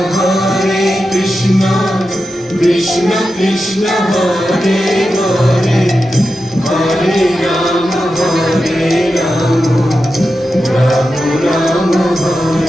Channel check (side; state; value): both; normal; correlation 0.90